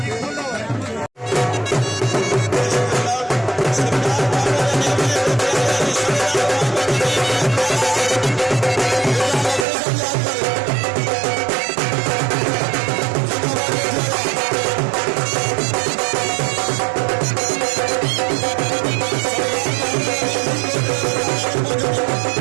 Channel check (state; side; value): drops out; left; at 9.7 s